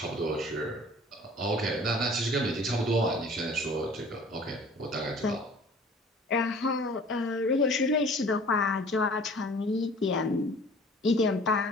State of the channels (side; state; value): both; normal; correlation 0.48